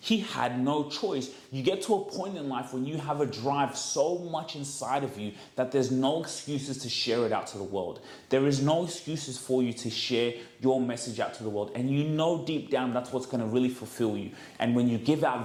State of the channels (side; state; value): both; identical; correlation 1.00